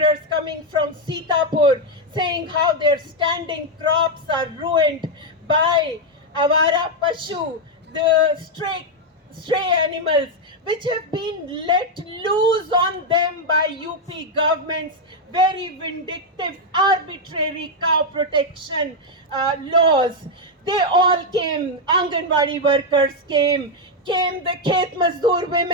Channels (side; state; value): both; normal; correlation 0.02